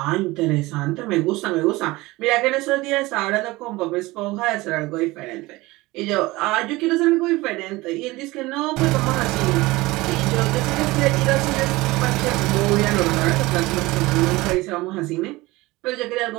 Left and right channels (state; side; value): quieter; left; 20.7 dB